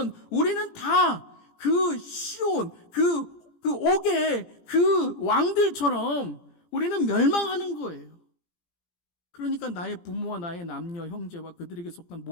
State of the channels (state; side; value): late; right; 17 ms